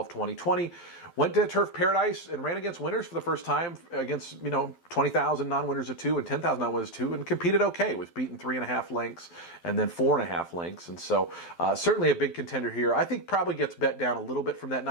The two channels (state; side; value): late; right; 12 ms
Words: 2020. Went to Turf Paradise and ran against winners for the first time against, you know, 20,000 non-winners of 2 and 10,000 non-winners of 2, and competed okay. Was beaten 3.5 lengths and then 4.5 lengths. And so certainly a big contender here. I think probably gets bet down a little bit from that